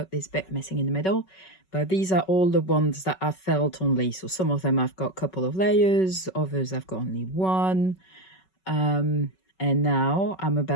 this bit missing in the middle, but these are all the ones that I've felt only. So some of them I've got a couple of layers, others I've got only one. And now I'm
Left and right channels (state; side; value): late; right; 5.3 ms